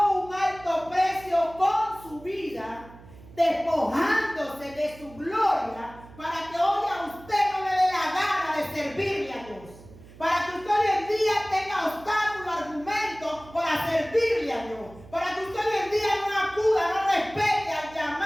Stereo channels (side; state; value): right; noise; hum, 20 dB below the sound